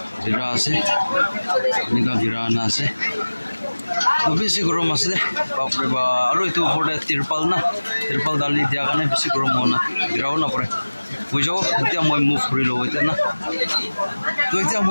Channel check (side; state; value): both; inverted; correlation -1.00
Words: ভিৰা আছে এনেকুৱা ভিৰা আনা আছে তো বেছি গৰম আছে বাপৰে বা আৰু এইটো ওপৰতে তিৰপাল ডালি দিয়া কাৰণে বেছি গৰম হোৱা না ভিৰাও নপৰে হৈ যাব এতিয়া মই মুভ কৰি লওঁ এতিয়া না তো এতিয়া